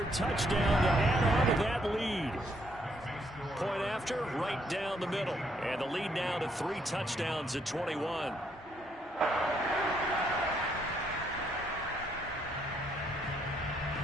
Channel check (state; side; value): normal; both; correlation 0.72